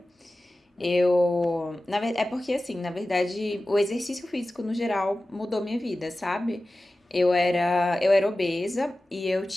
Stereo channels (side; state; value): both; normal; correlation 0.95